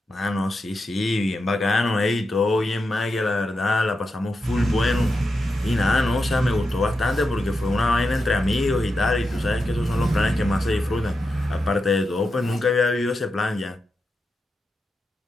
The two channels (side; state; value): both; normal; correlation 0.88